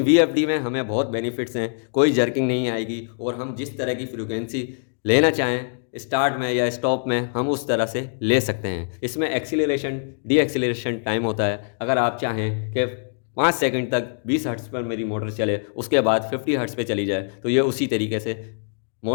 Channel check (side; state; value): right; silent; digital silence